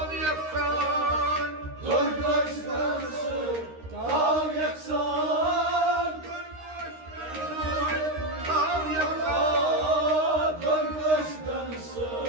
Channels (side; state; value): left; late; 13 ms